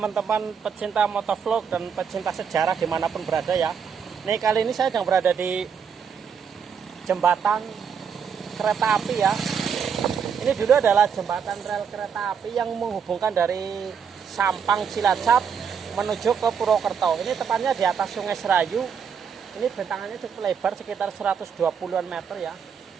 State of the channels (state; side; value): quieter; left; 7.0 dB